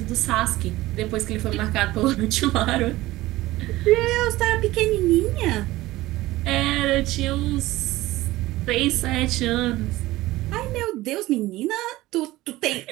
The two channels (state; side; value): quieter; left; 17.6 dB